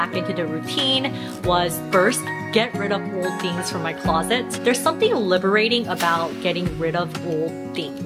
into the routine was first, get rid of old things from my closet. There's something liberating about getting rid of old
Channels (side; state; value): both; identical; correlation 1.00